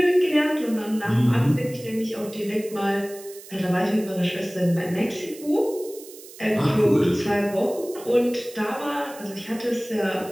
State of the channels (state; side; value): noise; right; hiss, 18 dB below the sound